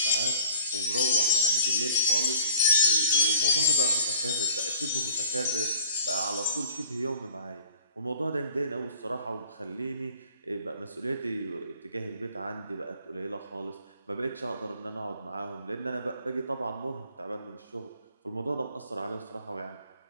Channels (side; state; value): both; inverted; correlation -0.53